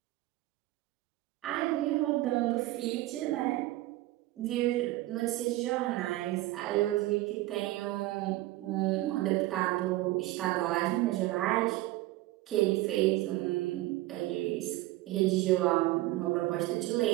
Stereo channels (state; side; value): quieter; left; 17.6 dB